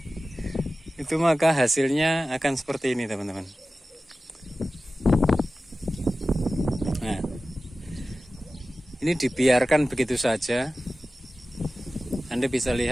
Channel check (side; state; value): both; normal; correlation 0.95